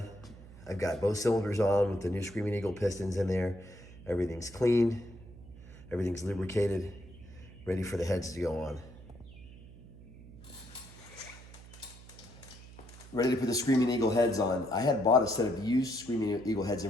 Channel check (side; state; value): right; noise; hum, 18 dB below the sound